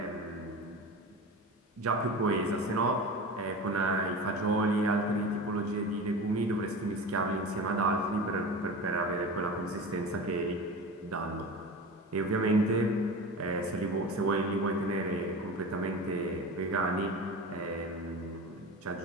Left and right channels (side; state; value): both; normal; correlation 0.31